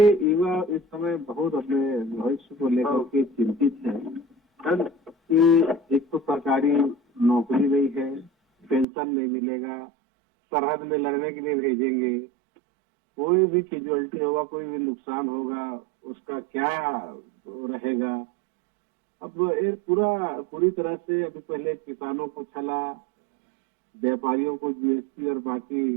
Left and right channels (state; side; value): drops out; left; at 8.8 s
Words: युवा इस समय बहुत अपने भविष्य को लेकर के चिंतित हैं कि एक तो सरकारी नौकरी नहीं है, पेंशन नहीं मिलेगा, सरहद में लड़ने के लिए भेजेंगे, कोई भी कैजुअलिटी होगा, कोई भी नुकसान होगा, उसका क्या रहेगा। अब ये पूरी तरह से अभी पहले किसानों को छला, व्यापारियों को जीएसटी और बाकी